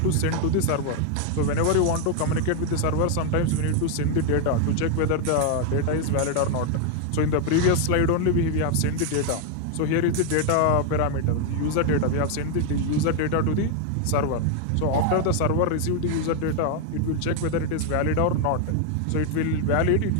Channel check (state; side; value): different; both; correlation 0.01